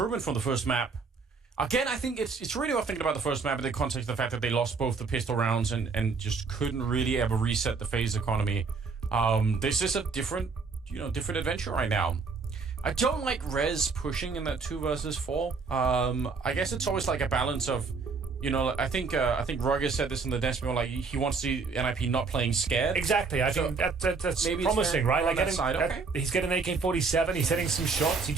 from the first map. Again, I think it's really worth thinking about the first map in the context of the fact that they lost both the pistol rounds and just couldn't really ever reset the FaZe economy. This is a different adventure right now. I don't like Rez pushing in that 2 versus 4. I guess it's always like a balance of, I think Roger said this in the desk, like he wants to see NIP not playing scared. Exactly. I think that's promising, right? Like he's getting an AK-47. He's hitting some shots. He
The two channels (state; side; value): quieter; left; 4.7 dB